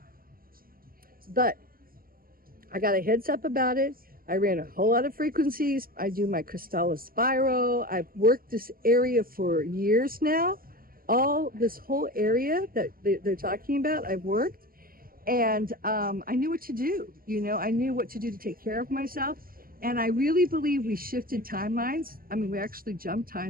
But I got a heads up about it. I ran a whole lot of frequencies. I do my Crystallis spiral. I've worked this area for years now. All this whole area that they're talking about, I've worked. And I knew what to do. I knew what to do to take care of myself. And I really believe we shifted timelines. I mean, we actually jumped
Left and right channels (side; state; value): left; late; 0.42 ms